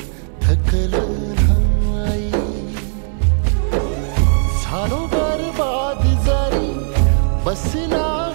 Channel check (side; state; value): left; silent; 68 dB below the other